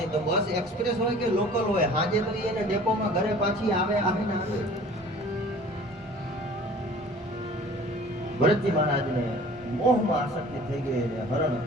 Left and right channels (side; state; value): both; normal; correlation 0.47